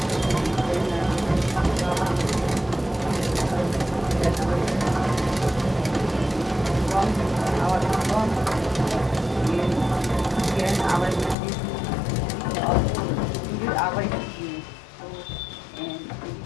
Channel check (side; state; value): right; drops out; at 11.4 s